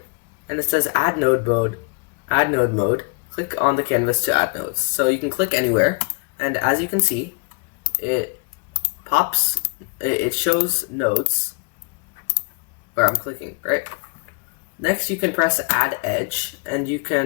and it says Add Node Mode. Click on the canvas to add nodes. So you can click anywhere, and as you can see, it shows nodes where I'm clicking, right? Next, you can press Add Edge, and you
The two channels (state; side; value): quieter; right; 32.7 dB